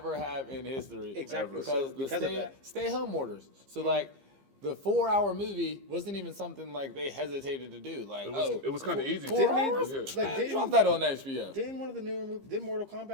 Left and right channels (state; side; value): late; left; 15 ms